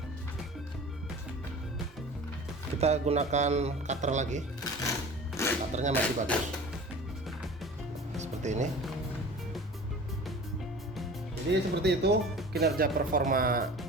kita gunakan cutter lagi. Cutternya masih bagus seperti ini. Jadi seperti itu kinerja performa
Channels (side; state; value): both; normal; correlation 0.40